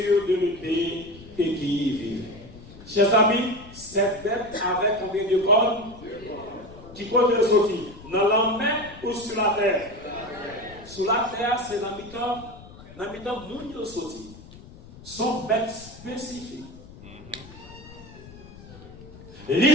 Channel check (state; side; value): noise; left; rumble, 18 dB below the sound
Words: de l'épée et qui y vivait. Chers amis, cette bête avait combien de cornes? Qui compte les sortir? Dans la mer ou sur la terre? Sur la terre, c'est l'habitant moun sorti. Son bête spécifique.